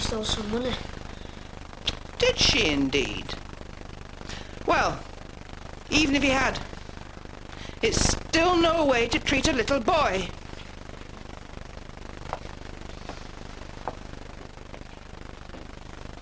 stole some money. Did she indeed? Well, even if he had, it's still no way to treat a little boy.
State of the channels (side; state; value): both; identical; correlation 1.00